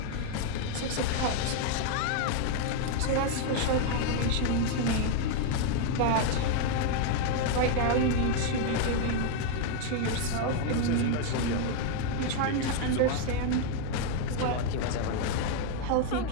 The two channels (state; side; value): different; both; correlation 0.00